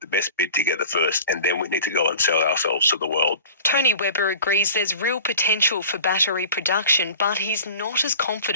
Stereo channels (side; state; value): both; inverted; correlation -0.42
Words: best bid together first, and then we need to go and sell ourselves to the world. Tony Webber agrees there's real potential for battery production, but he's not as